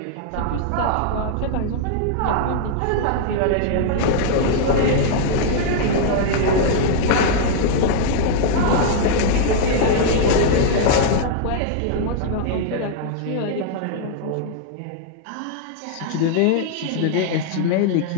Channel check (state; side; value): different; both; correlation -0.01